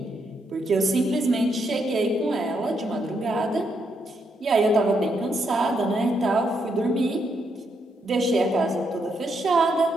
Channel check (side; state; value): both; normal; correlation 0.78